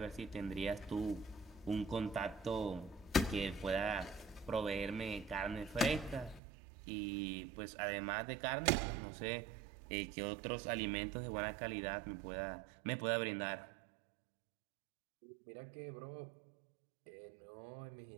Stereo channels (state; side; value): drops out; left; at 6.4 s